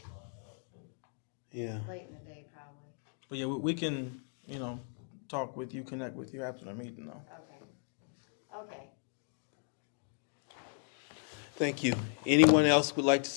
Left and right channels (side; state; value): right; silent; 54 dB below the other